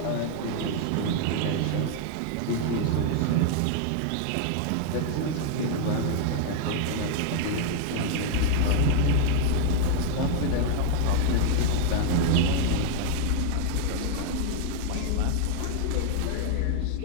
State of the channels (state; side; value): different; both; correlation 0.00